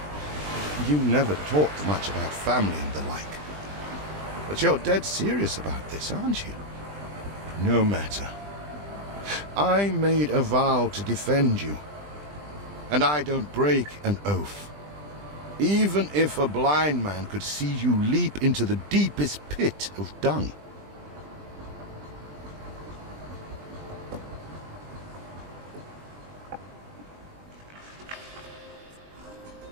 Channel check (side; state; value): left; late; 20 ms